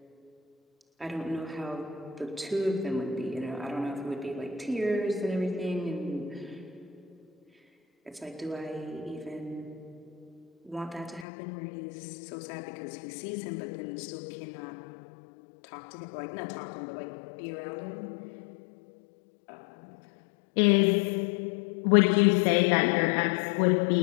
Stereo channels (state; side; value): drops out; right; at 11.2 s